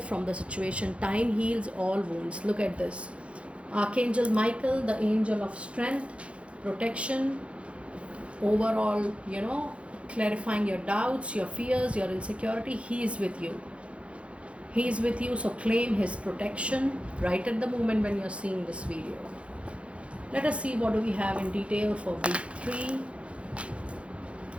from the situation. Time heals all wounds. Look at this. Archangel Michael, the angel of strength, protection, overall, clarifying your doubts, your fears, your insecurity. He is with you. He is with you, so claim his protection right at the moment when you're seeing this video. Let us see what do we have in detail for week 3.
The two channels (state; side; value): late; left; 0.061 ms